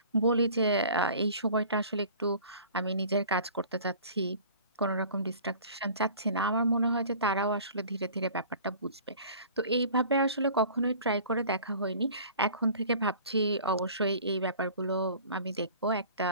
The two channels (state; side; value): inverted; both; correlation -0.46